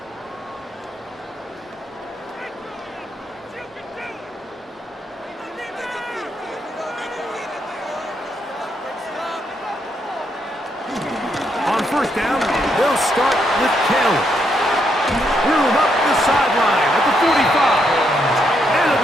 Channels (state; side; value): normal; both; correlation 0.77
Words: First down, they'll start with Taylor. Room up the sideline at the 45. And he'll